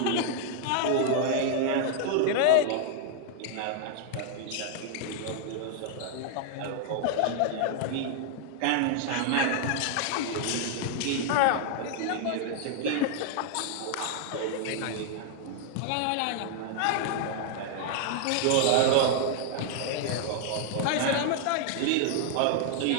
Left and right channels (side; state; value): both; different; correlation 0.00